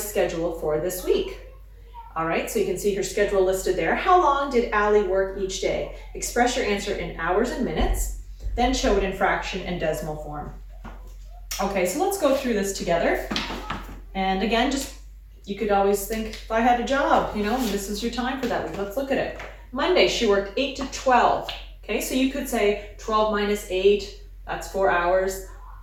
schedule for this week. All right, so you can see her schedule listed there. How long did Allie work each day? Express your answer in hours and minutes, then show it in fraction and decimal form. Okay, so let's go through this together. And again, you could always think, if I had a job, this is your time for that week. Let's look at it. Monday, she worked 8 to 12. Okay, so you could say 12 minus 8, that's 4 hours.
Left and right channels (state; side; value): identical; both; correlation 1.00